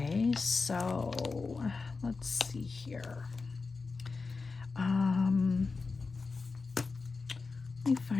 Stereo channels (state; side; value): quieter; right; 4.3 dB